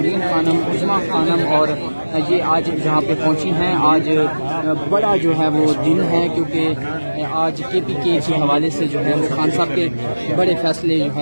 خانم, عظمیٰ خانم اور یہ آج جہاں پہ پہنچی ہیں. آج بڑا جو ہے وہ دن ہے کیونکہ آج کے پی کے حوالے سے جو ہے وہ خان صاحب کے بڑے فیصلے جو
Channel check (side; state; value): both; inverted; correlation -1.00